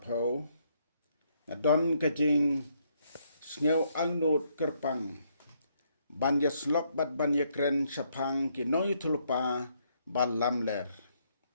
na don kajing sngew angnut kerpang banya slok bat banya kren sapang ki Nongiathuhlypa ban Lamler.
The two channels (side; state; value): both; inverted; correlation -0.73